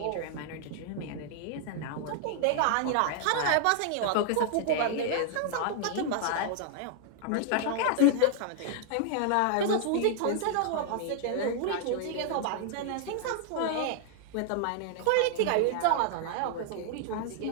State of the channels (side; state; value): both; different; correlation 0.00